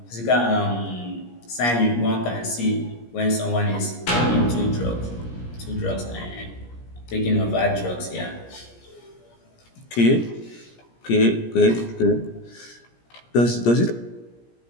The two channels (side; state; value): right; late; 17 ms